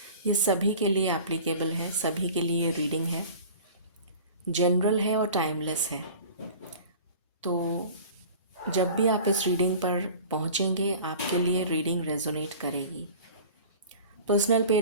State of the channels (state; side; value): inverted; both; correlation -0.41